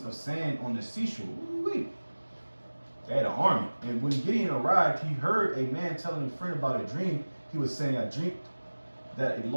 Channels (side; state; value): both; inverted; correlation -1.00